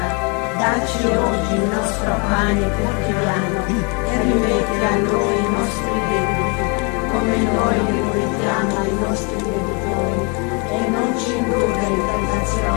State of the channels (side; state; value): right; quieter; 33.6 dB